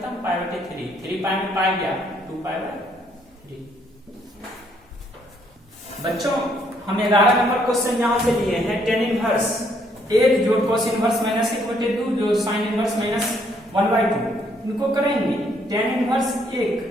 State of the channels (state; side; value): normal; both; correlation 0.68